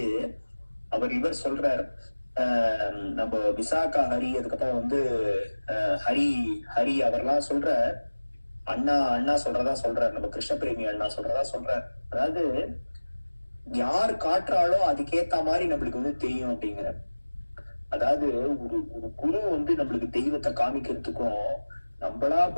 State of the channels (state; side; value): inverted; both; correlation -1.00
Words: இவர் சொல்றார், நம்ம விசாகா ஹரி, அதுக்கப்புறம் வந்து ஹரி அவர்லாம் சொல்ற, அண்ணா சொல்றதா சொல்றாரு, நம்ம கிருஷ்ண பிரேமி அண்ணா சொல்றதா சொல்றாரு. அதாவது யார் காட்டுறாலோ அதுக்கேத்த மாதிரி நம்மளுக்கு வந்து தெரியும் அப்படிங்கிற. அதாவது ஒரு குரு வந்து நம்மளுக்கு தெய்வத்தை காமிக்கிறதுக்கும் நம்மளா